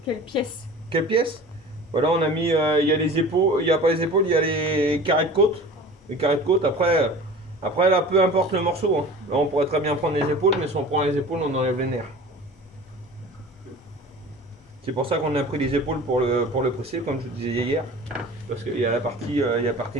quelle pièce? Quelle pièce? Voilà, on a mis, il y a les épaules, il n'y a pas les épaules, il y a les carrés de côte. Les carrés de côte, après là, peu importe le morceau. Hein. Là, on pourrait très bien prendre les épaules, mais si on prend les épaules, on enlève les nerfs. C'est pour ça qu'on a pris les épaules pour le presser, comme je vous disais hier. Parce qu'il y a la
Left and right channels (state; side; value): normal; both; correlation 0.40